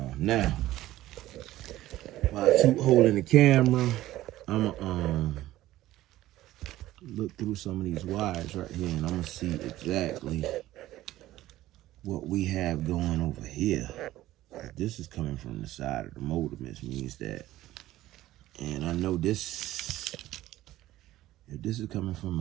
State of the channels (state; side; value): quieter; left; 15.3 dB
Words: Now, while Toot holding the camera, I'm gonna look through some of these wires right here, and I'm gonna see exactly what we have going over here. This is coming from the side of the motor, which means that, and I know this, if this is coming from